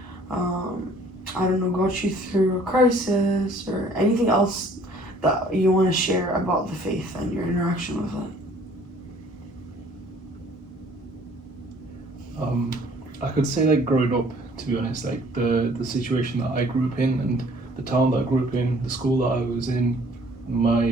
I don't know, got you through a crisis, or anything else that you want to share about the faith and your interaction with it? I could say like growing up, to be honest, like the situation that I grew up in, and the town that I grew up in, the school that I was in,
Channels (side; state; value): both; normal; correlation 0.56